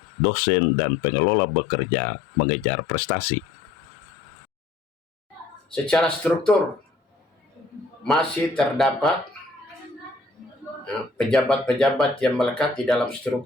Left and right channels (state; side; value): quieter; right; 3.7 dB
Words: dosen dan pengelola bekerja mengejar prestasi. Secara struktur masih terdapat pejabat-pejabat yang melekat di dalam